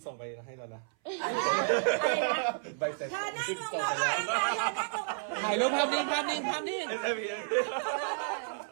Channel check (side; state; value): left; silent; 57 dB below the other